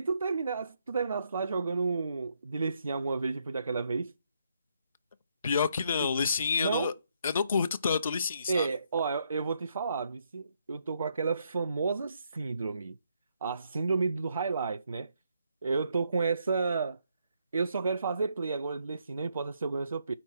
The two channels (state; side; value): inverted; both; correlation -0.74